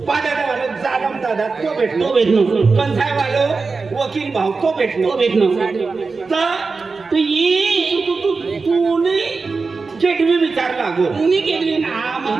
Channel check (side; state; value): left; quieter; 4.3 dB